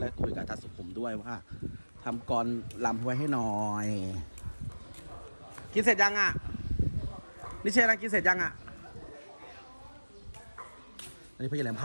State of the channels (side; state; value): both; inverted; correlation -1.00